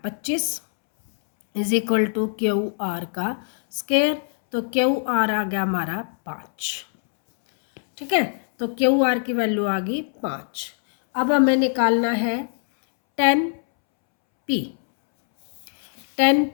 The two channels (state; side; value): silent; right; 64 dB below the other